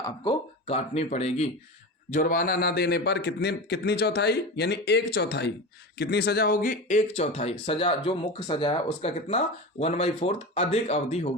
काटनी पड़ेगी। जुर्माना ना देने पर कितनी चौथाई? यानी 1/4 कितनी सजा होगी? 1/4 सजा, जो मुख्य सजा है उसका कितना? 1/4 अधिक अवधि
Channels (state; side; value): normal; both; correlation 0.26